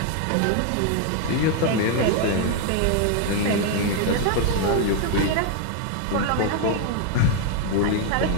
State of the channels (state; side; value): different; both; correlation 0.00